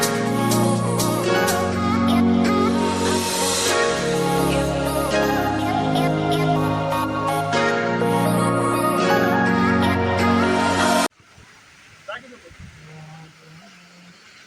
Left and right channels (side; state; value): both; identical; correlation 1.00